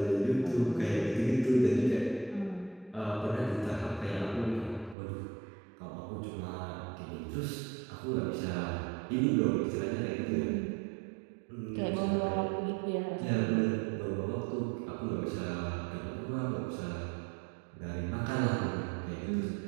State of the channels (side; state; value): left; drops out; at 5.0 s